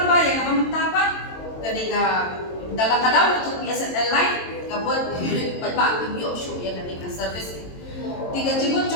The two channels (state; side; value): late; right; 22 ms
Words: yang mamanta pa kadika dalam kadang untuk BSNL line kabut Briew pa ki show ya kanina service tiga jibut